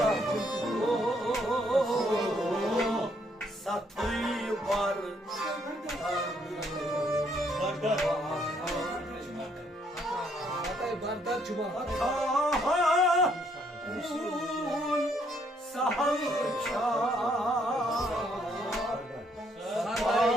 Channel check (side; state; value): both; normal; correlation 0.70